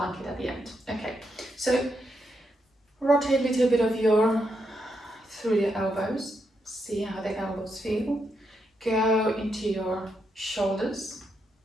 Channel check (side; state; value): both; normal; correlation 0.81